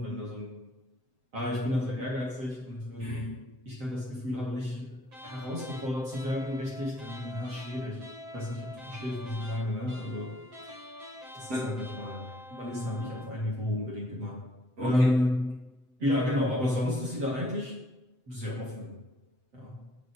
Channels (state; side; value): late; left; 7.8 ms